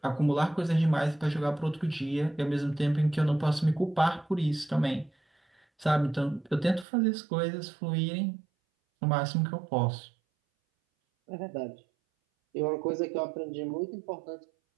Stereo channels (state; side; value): drops out; left; at 6.9 s